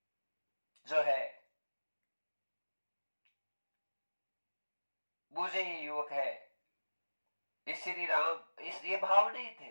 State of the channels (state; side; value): inverted; both; correlation -1.00